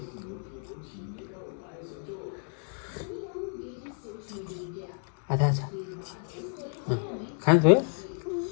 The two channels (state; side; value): silent; right; 56 dB below the other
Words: आथा छ खान्छ